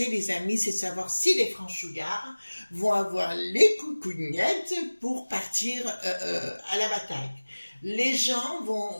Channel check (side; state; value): both; inverted; correlation -1.00